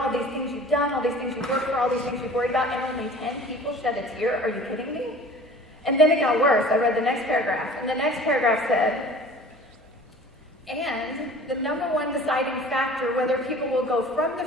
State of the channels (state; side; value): normal; both; correlation 0.45